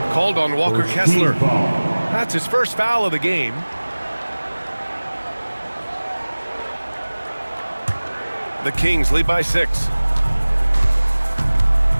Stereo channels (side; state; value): both; inverted; correlation -1.00